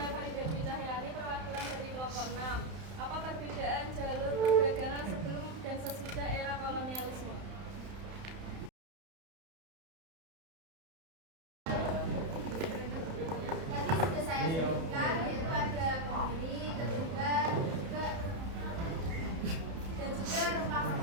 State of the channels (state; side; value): late; left; 31 ms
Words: Farida Dwi Cahyani, perwakilan dari kelompok 6. Apa perbedaan jalur perdagangan sebelum dan sesudah era kolonialisme? Tadi sudah saya sebutkan, yaitu ada berdiri, ketumbar, dan juga